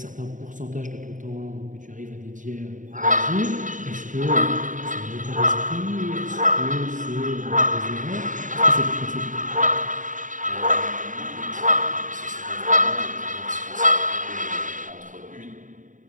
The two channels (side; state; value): left; late; 0.37 ms